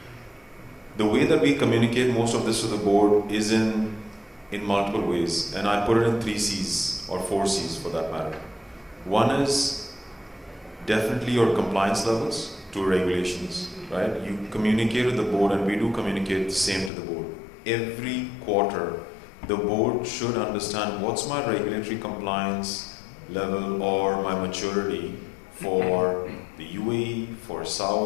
The way that we communicate most of this to the board is in multiple ways. And I put it in 3 C's or 4 C's for that matter. One is definitely your compliance levels to regulations. Right? You communicate with the board, and we do communicate the same to the board. Every quarter, the board should understand what's my regulatory compliance level or my maturity for the UAE, for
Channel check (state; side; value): drops out; right; at 16.9 s